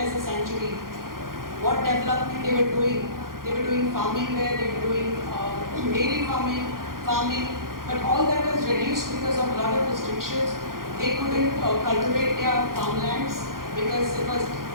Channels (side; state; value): left; late; 0.91 ms